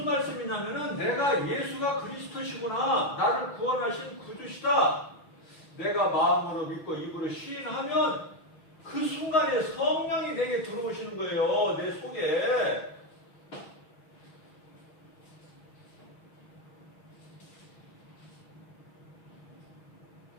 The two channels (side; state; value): right; late; 6.2 ms